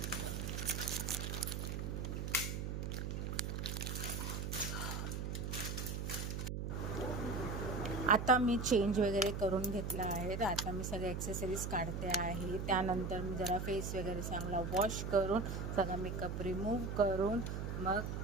आता मी चेंज वगैरे करून घेतला आहे. तर आता मी सगळे ॲक्सेसरीज काढते आहे. त्यानंतर मी जरा फेस वगैरे चांगला वॉश करून सगळा मेकअप रिमूव्ह करून मग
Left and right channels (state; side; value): noise; right; hum, 3 dB below the sound